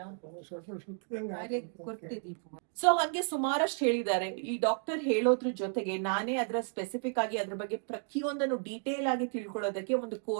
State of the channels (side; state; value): left; silent; 56 dB below the other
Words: ಅರೆ ಕೊಡ್ತೆ ದೀಪ ಸೊ ಹಂಗೆ ಸುಮಾರಷ್ಟು ಹೇಳಿದ್ದಾರೆ. ಈ ಡಾಕ್ಟರ್ ಹೇಳೋದ್ರ ಜೊತೆಗೆ ನಾನೇ ಅದರ ಸ್ಪೆಸಿಫಿಕ್ ಆಗಿ ಅದ್ರ ಬಗ್ಗೆ ಪ್ರತಿಯೊಂದನ್ನು ಡೀಟೇಲ್ ಆಗಿ ತಿಳ್ಕೊಳ್ಳೋದಕ್ಕೆ ಒಂದು